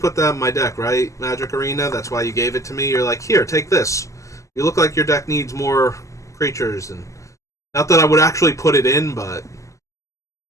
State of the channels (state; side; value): late; right; 0.16 ms